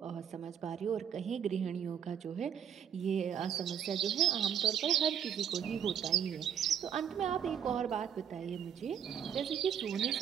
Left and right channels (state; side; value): quieter; left; 8.7 dB